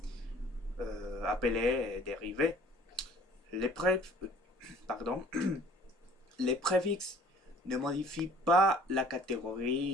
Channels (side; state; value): both; normal; correlation 0.52